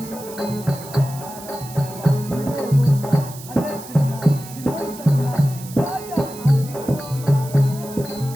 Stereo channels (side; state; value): right; noise; hiss, 16 dB below the sound